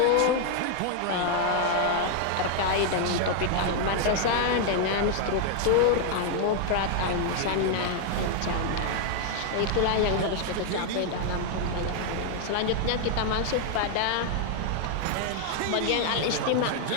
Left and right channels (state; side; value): different; both; correlation 0.00